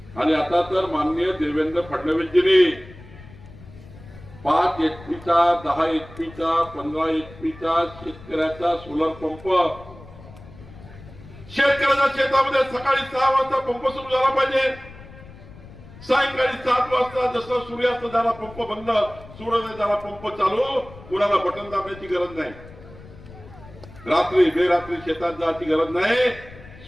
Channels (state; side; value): noise; left; rumble, 19 dB below the sound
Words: आणि आता तर माननीय देवेंद्र फडणवीसजींनी 5 HP-चा, 10 HP-चा, 15 HP-चा शेतकऱ्याचा सोलर पंप, शेतकऱ्याच्या शेतामध्ये सकाळी 6 वाजता पंप सुरू झाला पाहिजे, सायंकाळी 7 वाजता जसं सूर्यास्त झाला पंप बंद, सूर्योदय झाला पंप चालू, कुणाला बटन दाबण्याची गरज नाही, रात्री बेरात्री शेतात जायची गरज नाही.